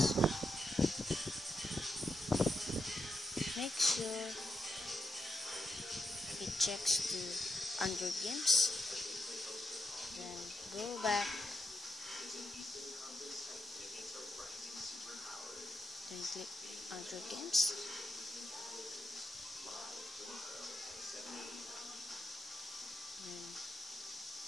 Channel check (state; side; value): normal; both; correlation 0.84